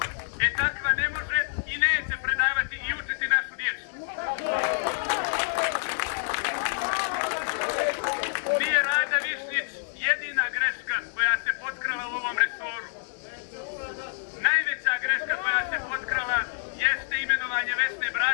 Takva ne može i neće predavati i učiti našu djecu. Nije Rada Višnjić jedina greška koja se potkrala u ovom resoru. Najveća greška koja se potkrala jeste imenovanje Vesne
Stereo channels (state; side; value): silent; right; 57 dB below the other